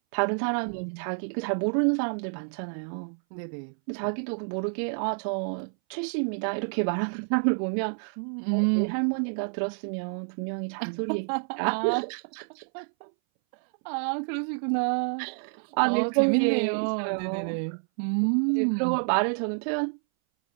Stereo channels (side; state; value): left; silent; 59 dB below the other